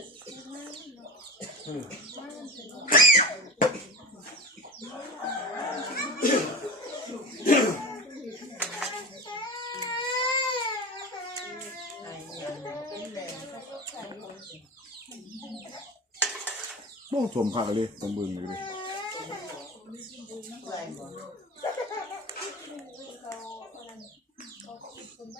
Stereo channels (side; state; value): both; normal; correlation 0.28